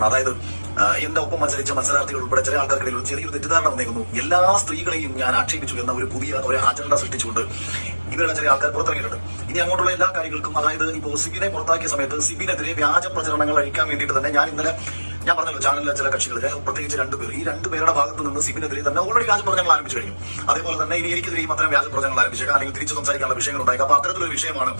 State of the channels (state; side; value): inverted; both; correlation -1.00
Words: അതായത് എന്റെ ഒപ്പം മത്സരിച്ച മത്സരാർത്ഥികൾ ഉൾപ്പെടെ ചില ആൾക്കാർക്കിടയിൽ ഒരു ചെറിയൊരു തെറ്റിദ്ധാരണ വന്നേക്കുന്നു. എല്ലാ സ്ത്രീകളെയും ഞാൻ ആക്ഷേപിച്ചു എന്ന ഒരു പുതിയ ഒരു അജണ്ട സൃഷ്ടിച്ചുകൊണ്ട് ഇവരുടെ ചില ആൾക്കാർ പുറത്തിറങ്ങിയിട്ടുണ്ട്. ഇനി അങ്ങോട്ടുള്ള എല്ലാ കാര്യങ്ങൾക്കും, അതായത് ഇപ്പോൾ സിബിനെ പുറത്താക്കിയ സമയത്ത് സിബിനെതിരെ വ്യാജ പ്രചരണങ്ങൾ അഴിക്കാൻ വേണ്ടിയിട്ട് തന്നെ ഞാൻ പറഞ്ഞല്ലോ, ചാനലിലെ ചില കക്ഷികൾ, പ്രത്യേകിച്ച് രണ്ടുപേർ, ഈ രണ്ടുപേരുടെ ഭാഗത്ത് നിന്ന് സിബിനെതിരെ തന്നെ ഓൾറെഡി വ്യാജ പ്രചരണങ്ങൾ ആരംഭിച്ചു കഴിഞ്ഞു. അതേപോലെ തന്നെ ഇനി എനിക്കെതിരെയും അത്തരം വ്യാജ പ്രചരണങ്ങൾ ആരംഭിച്ചേക്കാം, അല്ലെങ്കിൽ തിരിച്ചു സംസാരിക്കാനുള്ള വിഷയങ്ങൾ ഉണ്ടായേക്കാം. അപ്പൊ അത്തരത്തിലൊരു വിഷയമാണ്